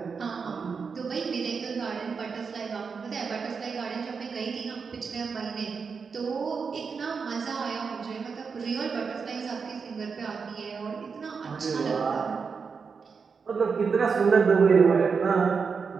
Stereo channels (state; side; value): quieter; left; 5.5 dB